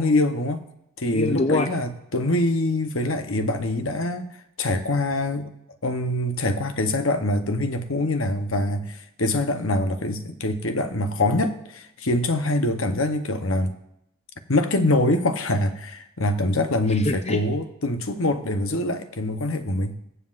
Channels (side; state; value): both; normal; correlation 0.34